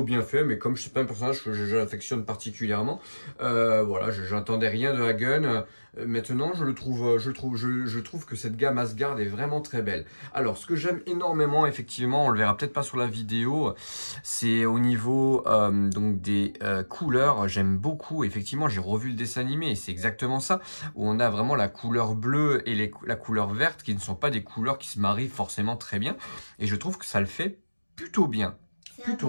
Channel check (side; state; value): both; inverted; correlation -1.00